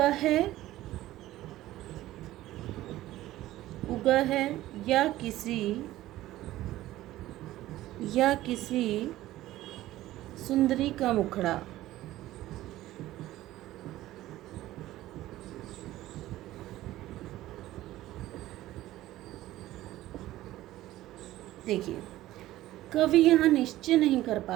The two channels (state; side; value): quieter; left; 15.4 dB